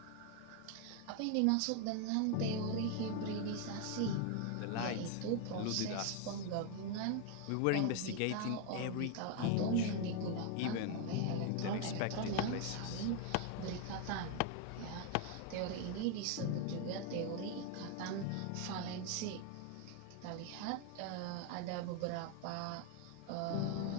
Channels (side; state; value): both; different; correlation 0.01